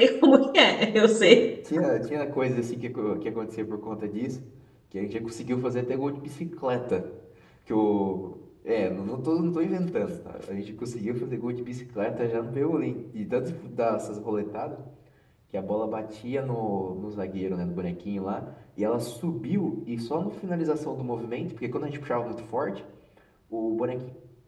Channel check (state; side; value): identical; both; correlation 1.00